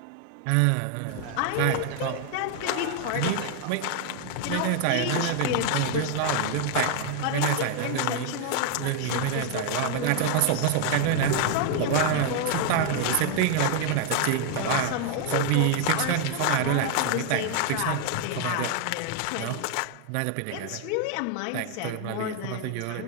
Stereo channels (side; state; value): both; different; correlation 0.00